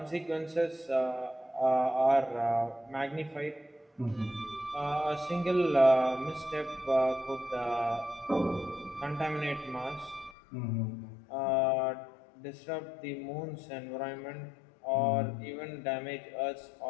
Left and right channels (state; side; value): drops out; right; at 10.4 s